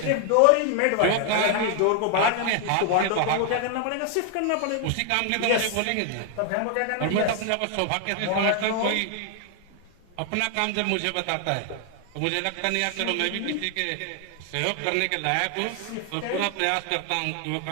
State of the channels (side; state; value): both; different; correlation 0.00